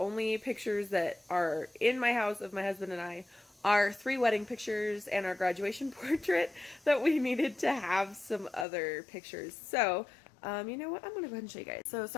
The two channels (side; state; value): right; drops out; at 8.7 s